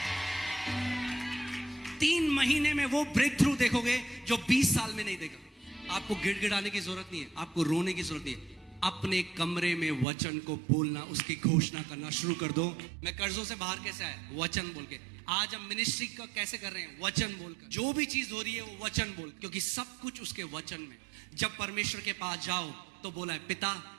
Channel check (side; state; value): left; drops out; at 10.1 s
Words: 3 महीने में वो ब्रेक थ्रू देखोगे जो 20 साल में नहीं देखा। आपको गिड़गिड़ाने की जरूरत नहीं है, आपको रोने की जरूरत नहीं है। अपने कमरे में वचन को बोलना, उसकी घोषणा करना शुरू कर दो। मैं कर्जों से बाहर कैसे आया? वचन बोल के। आज हम मिनिस्ट्री का कैसे कर रहे हैं? वचन बोलकर। जो भी चीज हो रही है वो वचन बोल, क्योंकि सब कुछ उसके वचन में। जब परमेश्वर के पास जाओ तो बोला है पिता